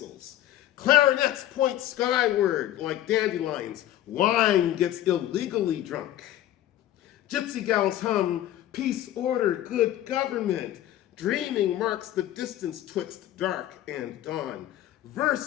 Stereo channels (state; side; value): quieter; right; 13.0 dB